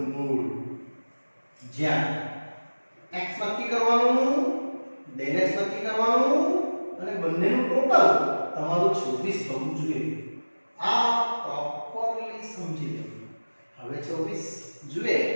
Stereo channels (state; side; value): inverted; both; correlation -1.00